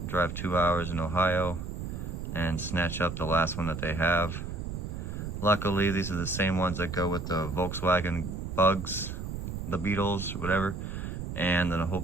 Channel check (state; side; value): noise; right; rumble, 6 dB below the sound